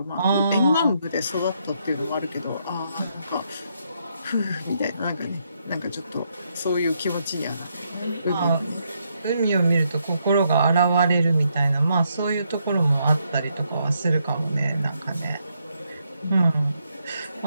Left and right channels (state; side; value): inverted; both; correlation -0.77